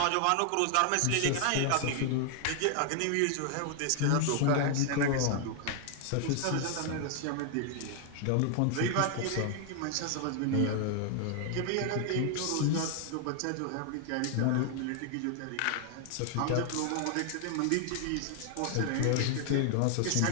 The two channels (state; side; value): different; both; correlation 0.00